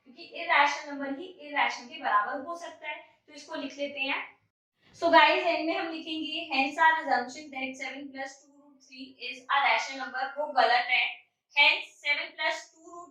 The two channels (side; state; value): both; identical; correlation 1.00